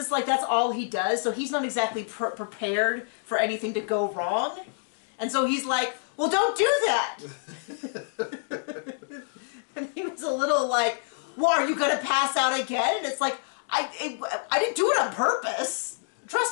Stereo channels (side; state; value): right; silent; digital silence